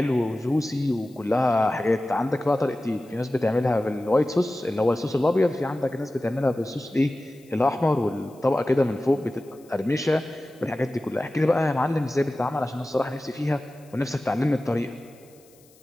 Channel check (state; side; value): noise; left; hiss, 29 dB below the sound